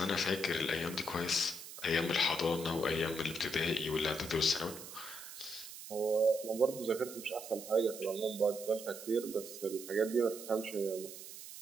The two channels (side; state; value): right; noise; hiss, 12 dB below the sound